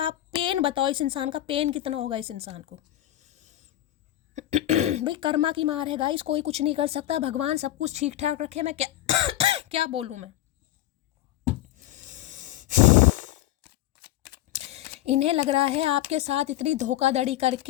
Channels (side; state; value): right; quieter; 14.2 dB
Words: पेन बताओ, इस इंसान का पेन कितना होगा इस इंसान को। भाई कर्मा की मार है गाइस, कोई कुछ नहीं कर सकता, भगवान सब कुछ ठीक ठाक रखे। मैं क्या क्या बोलूं मैं। इन्हें लग रहा है आपके साथ इतनी धोखाधड़ी